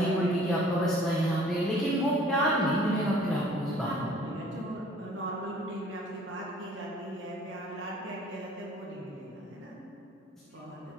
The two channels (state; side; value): normal; both; correlation 0.53